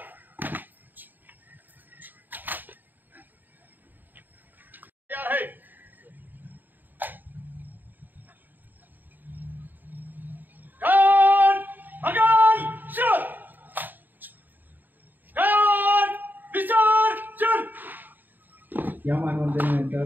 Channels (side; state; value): left; late; 0.089 ms